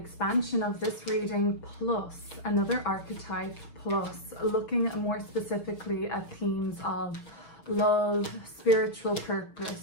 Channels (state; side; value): late; right; 6.7 ms